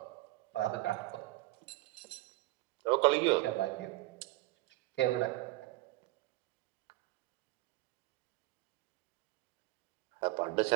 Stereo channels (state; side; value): quieter; left; 18.8 dB